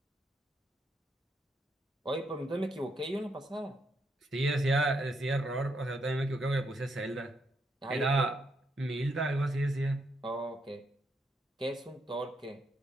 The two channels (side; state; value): both; normal; correlation 0.78